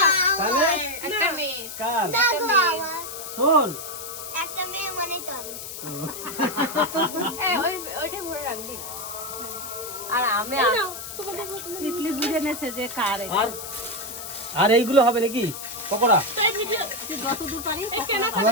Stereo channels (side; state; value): left; noise; hiss, 9 dB below the sound